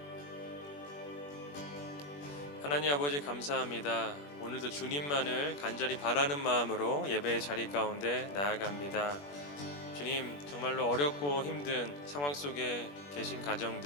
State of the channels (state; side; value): late; right; 21 ms